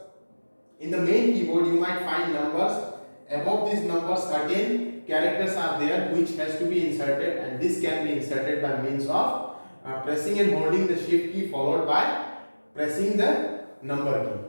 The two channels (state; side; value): inverted; both; correlation -1.00